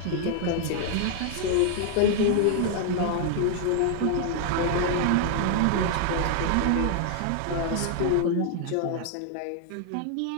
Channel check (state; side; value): different; both; correlation 0.00